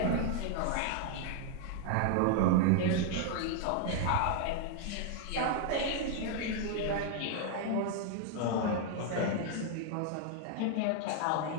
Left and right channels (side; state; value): both; different; correlation 0.00